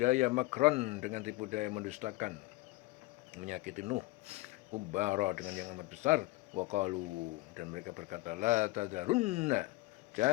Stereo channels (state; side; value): quieter; right; 20.6 dB